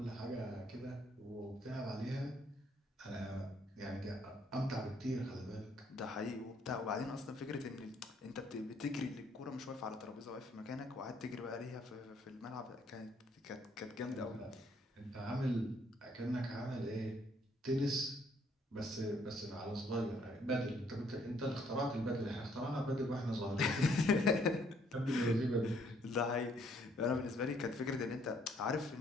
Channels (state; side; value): normal; both; correlation 0.66